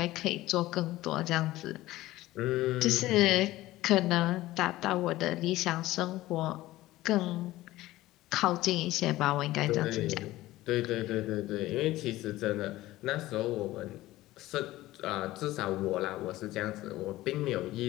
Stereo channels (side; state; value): right; quieter; 16.9 dB